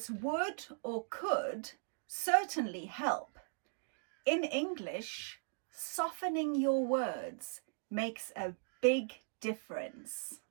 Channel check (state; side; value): silent; left; digital silence